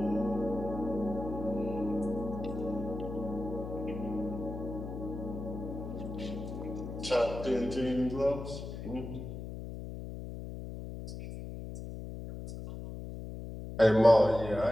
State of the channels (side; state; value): left; noise; hum, 8 dB below the sound